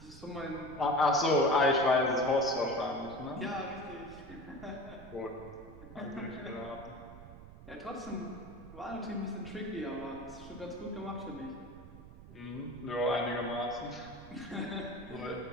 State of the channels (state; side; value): noise; right; rumble, 16 dB below the sound